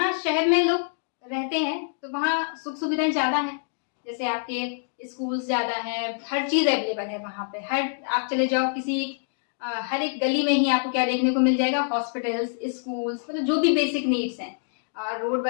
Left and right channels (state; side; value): silent; right; digital silence